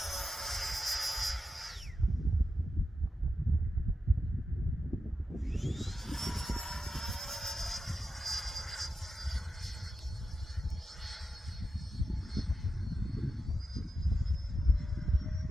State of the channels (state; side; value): normal; both; correlation 0.90